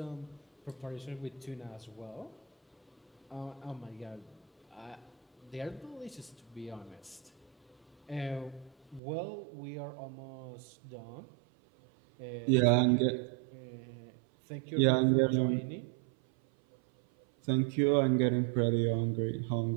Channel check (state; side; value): drops out; left; at 9.0 s